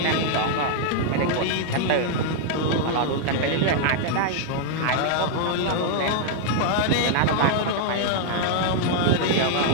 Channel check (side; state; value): both; different; correlation -0.01